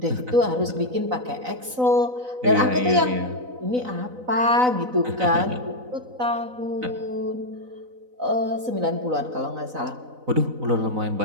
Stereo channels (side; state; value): left; late; 4.0 ms